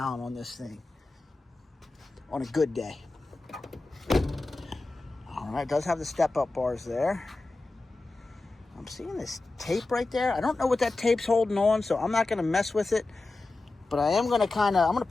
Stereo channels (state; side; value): quieter; right; 3.3 dB